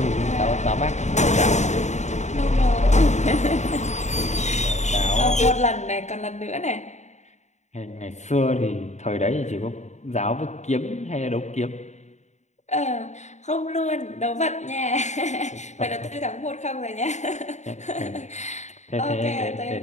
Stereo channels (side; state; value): right; late; 0.34 ms